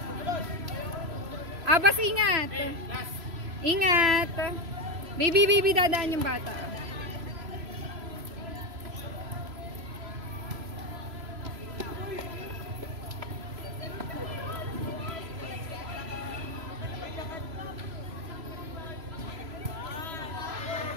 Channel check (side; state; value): left; late; 3.0 ms